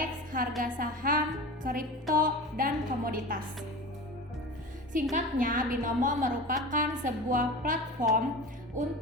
harga saham, kripto, dan komoditas. Singkatnya, binomo merupakan sebuah platform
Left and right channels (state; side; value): normal; both; correlation 0.32